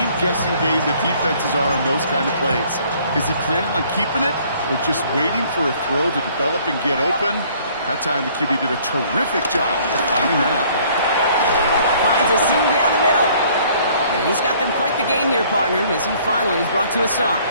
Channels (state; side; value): inverted; both; correlation -0.58